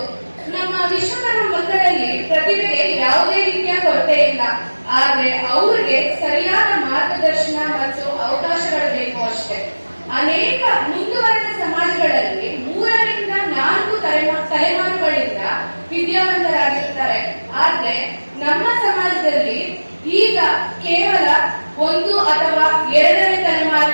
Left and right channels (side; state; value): both; inverted; correlation -1.00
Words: ನಮ್ಮ ವಿಶ್ವಕರ್ಮ ಮಕ್ಕಳಲ್ಲಿ ಪ್ರತಿಭೆಗೆ ಯಾವುದೇ ರೀತಿಯ ಕೊರತೆ ಇಲ್ಲ. ಆದ್ರೆ ಅವ್ರಿಗೆ ಸರಿಯಾದ ಮಾರ್ಗದರ್ಶನ ಮತ್ತು ಅವಕಾಶಗಳು ಬೇಕು ಅಷ್ಟೇ. ಅನೇಕ ಮುಂದುವರೆದ ಸಮಾಜಗಳಲ್ಲಿ 3ರಿಂದ 4 ತಲೆಮಾರುಗಳಿಂದ ವಿದ್ಯಾವಂತರಾಗಿರ್ತಾರೆ. ಆದ್ರೆ ನಮ್ಮ ಸಮಾಜದಲ್ಲಿ ಈಗ ಕೇವಲ 1 ಅಥವಾ 2ನೇ